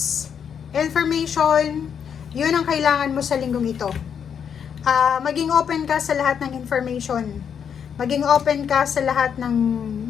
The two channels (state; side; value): quieter; right; 7.7 dB